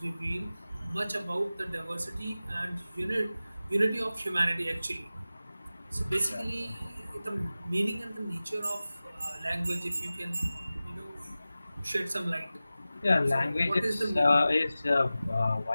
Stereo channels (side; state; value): both; inverted; correlation -0.96